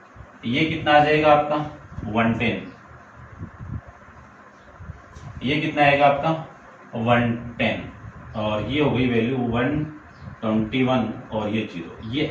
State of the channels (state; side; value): identical; both; correlation 1.00